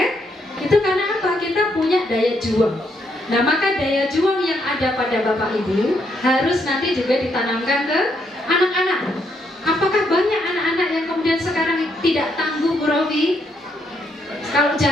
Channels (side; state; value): both; normal; correlation 0.75